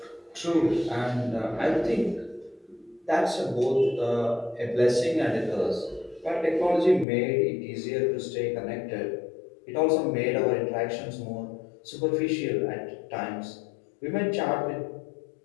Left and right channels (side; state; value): right; drops out; at 7.1 s